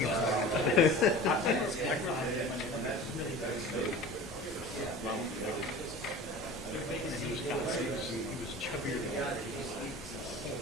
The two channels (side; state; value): both; normal; correlation 0.38